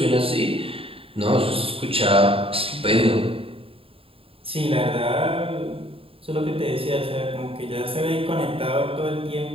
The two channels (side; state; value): left; late; 0.27 ms